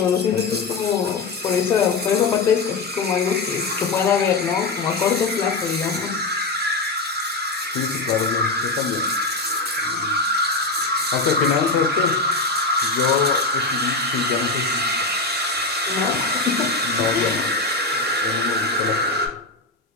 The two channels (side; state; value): right; quieter; 3.5 dB